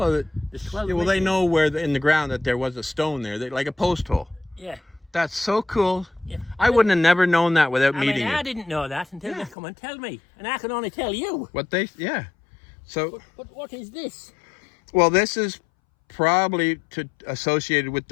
there's 12 yeah, well, they missing. know where in the ground that there was a stone there, like a post hole. Yeah. That's so cool. Yeah. I wouldn't have never known that without I meeting mean, I you. didn't know that until Yeah. they come and tell me, and I can only tell you. So, But what is this? well, this is probably associated with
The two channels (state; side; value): drops out; right; at 9.6 s